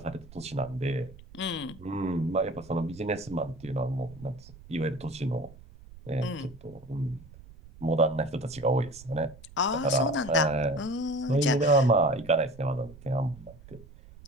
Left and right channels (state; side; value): noise; right; rumble, 20 dB below the sound